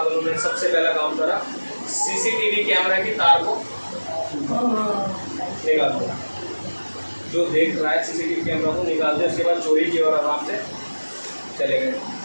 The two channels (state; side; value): inverted; both; correlation -1.00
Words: उन्होंने सबसे पहला काम करा, सीसीटीवी कैमरा की तार को निकाल दिया। जो देख रहा है सीसीटीवी कैमरा को निकाल दिया। उसके बाद चोरी की और आराम से चले गए।